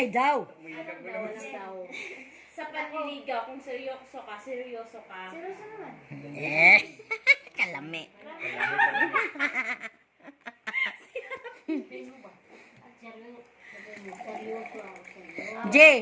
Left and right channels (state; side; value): identical; both; correlation 1.00